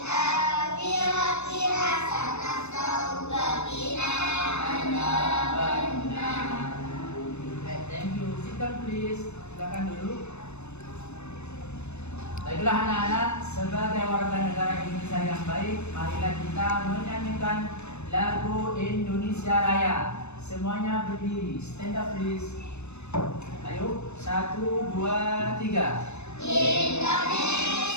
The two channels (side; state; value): right; late; 0.81 ms